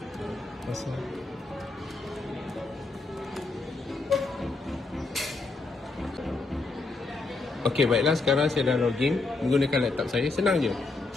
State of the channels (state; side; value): quieter; right; 3.6 dB